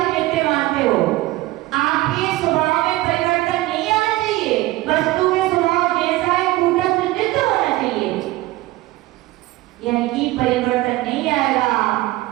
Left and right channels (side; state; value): left; quieter; 18.0 dB